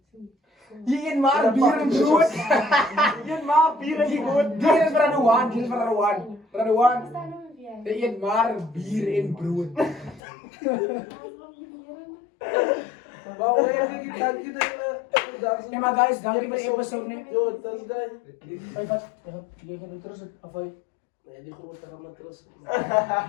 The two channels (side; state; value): right; drops out; at 10.2 s